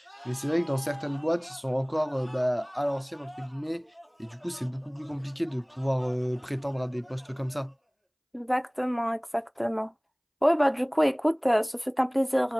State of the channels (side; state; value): both; identical; correlation 1.00